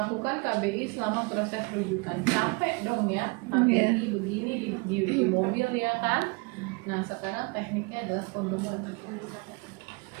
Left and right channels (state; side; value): quieter; left; 30.1 dB